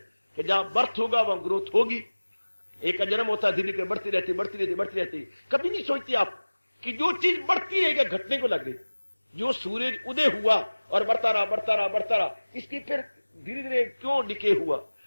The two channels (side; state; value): both; inverted; correlation -1.00